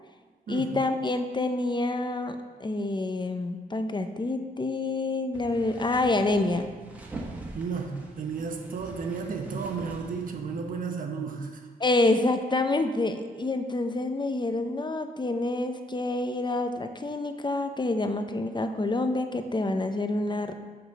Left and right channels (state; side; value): normal; both; correlation 0.68